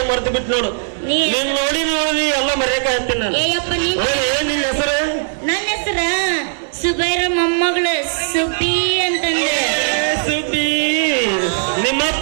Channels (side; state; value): left; silent; digital silence